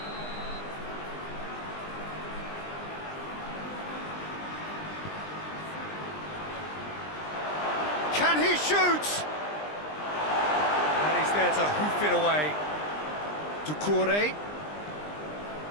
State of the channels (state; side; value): late; right; 20 ms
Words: Can he shoot? And he's there to hoof it away. Doucouré.